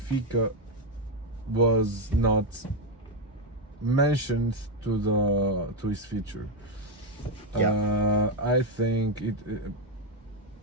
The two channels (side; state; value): both; normal; correlation 0.05